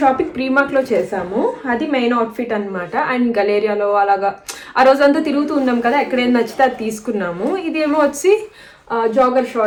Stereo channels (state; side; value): identical; both; correlation 1.00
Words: షాపింగ్ ప్రీమార్క్ లో చేసాము, అది మెయిన్ అవుట్ఫిట్ అనమాట. అండ్ గలేరియాలో అలాగా ఆ రోజంతా తిరుగుతూ ఉన్నాం కదా, ఎక్కడేం నచ్చితే అది తీసుకున్నాము. ఇదేమో వచ్చి జాగర్